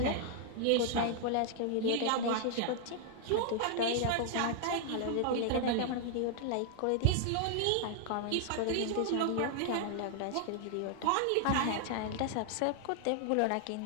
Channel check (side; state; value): both; different; correlation 0.00